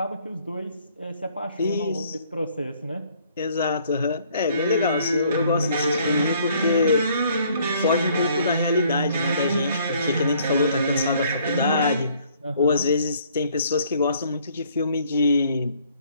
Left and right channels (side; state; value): both; inverted; correlation -0.62